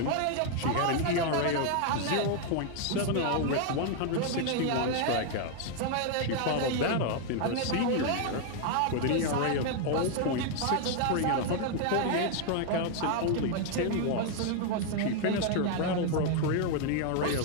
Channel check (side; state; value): both; different; correlation 0.00